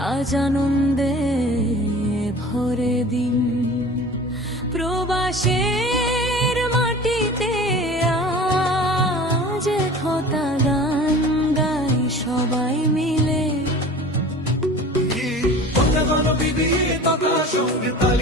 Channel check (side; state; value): both; normal; correlation 0.41